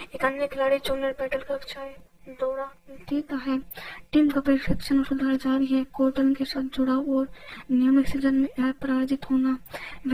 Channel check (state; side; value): identical; both; correlation 1.00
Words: एक अन्य खिलाड़ी जूनियर बैटल कक्षाएं दौरा देता है। टीम का प्रशिक्षण और सुधार जारी है। कॉटन के साथ जुड़ाव और नियमित सीजन में अपराजित होना।